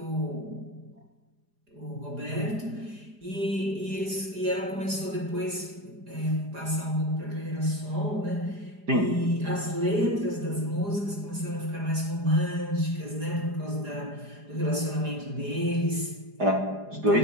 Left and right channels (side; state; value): left; late; 4.9 ms